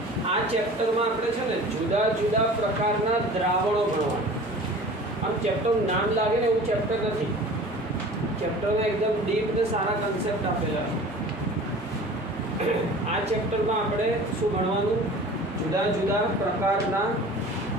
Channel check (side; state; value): both; normal; correlation 0.42